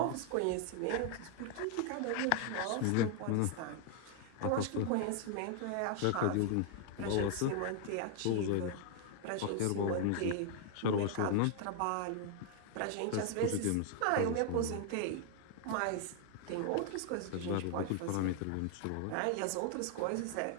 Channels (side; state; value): both; different; correlation 0.00